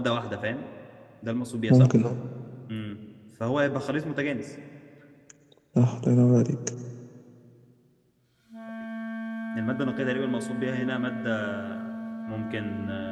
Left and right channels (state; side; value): identical; both; correlation 1.00